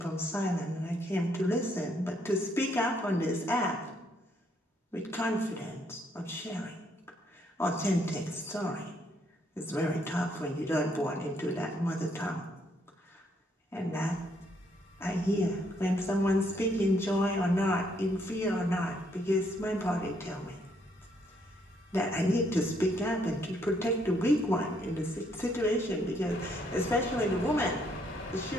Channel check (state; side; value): normal; both; correlation 0.71